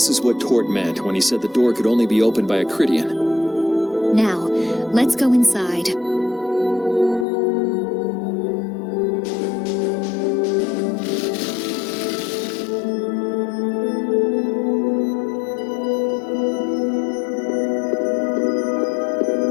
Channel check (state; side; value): drops out; right; at 7.2 s